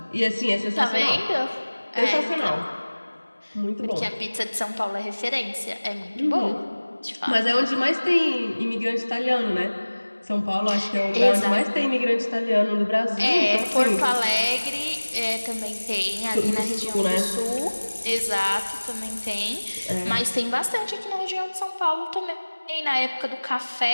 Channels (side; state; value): both; inverted; correlation -1.00